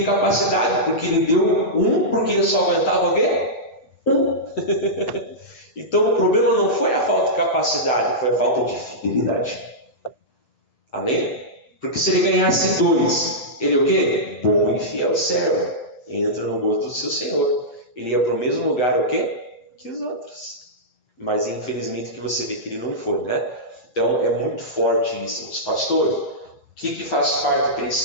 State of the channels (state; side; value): late; right; 7.8 ms